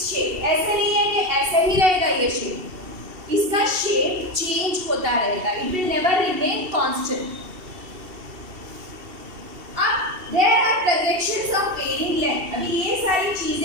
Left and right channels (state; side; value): late; left; 2.7 ms